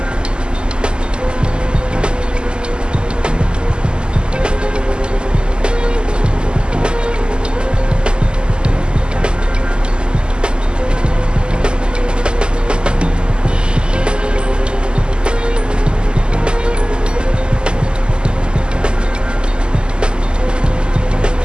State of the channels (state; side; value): late; left; 0.048 ms